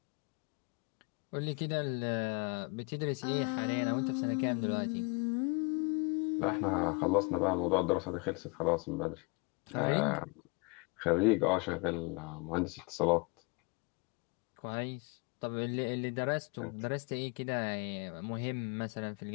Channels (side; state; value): right; quieter; 29.5 dB